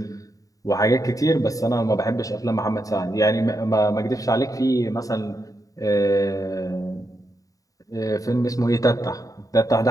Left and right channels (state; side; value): late; right; 0.17 ms